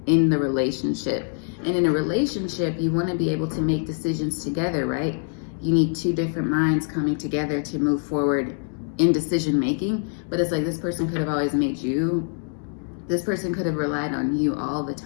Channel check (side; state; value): right; silent; 62 dB below the other